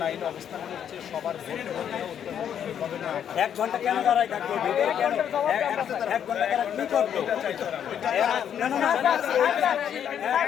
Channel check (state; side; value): quieter; right; 9.0 dB